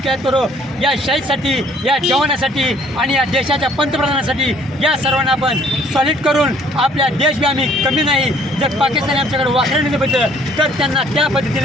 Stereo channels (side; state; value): both; normal; correlation 0.59